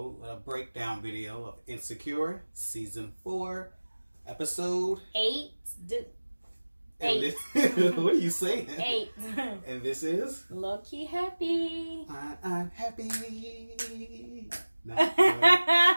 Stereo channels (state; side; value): inverted; both; correlation -1.00